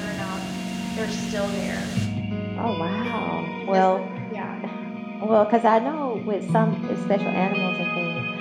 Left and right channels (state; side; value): identical; both; correlation 1.00